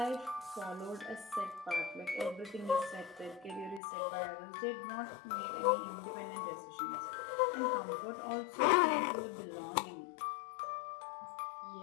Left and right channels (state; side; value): drops out; right; at 3.8 s